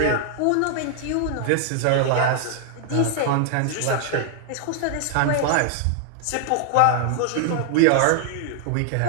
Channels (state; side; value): different; both; correlation 0.00